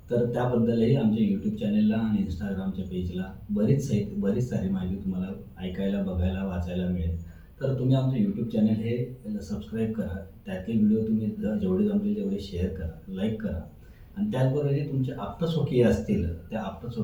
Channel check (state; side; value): identical; both; correlation 1.00